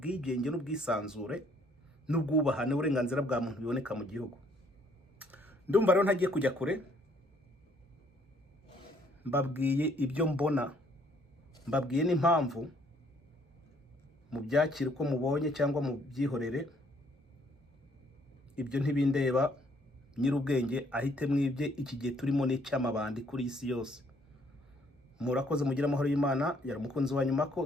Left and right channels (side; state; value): both; normal; correlation 0.65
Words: n'ubwisanzure n'ubwubahane uburenganzira bwa muntu biboneka mu gihugu. Ndumva rero ntagiye kujya kure, mbabwiye ibyo mbona, mbabwiye n'impamvu. Mu byakira uko mubonye cyangwa mu byihorere, ibyo ntibindeba. Nyirubwenge ahite mwibye. Iki gihe turimo n'icyamabandi kuri isi yose. Murakoze, mugira amahoro y'Imana. Yari umukunzi wa nyuma ko